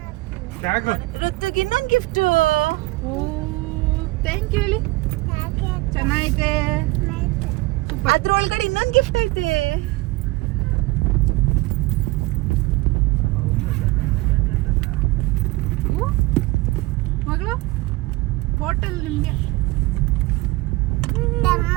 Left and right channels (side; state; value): left; quieter; 21.3 dB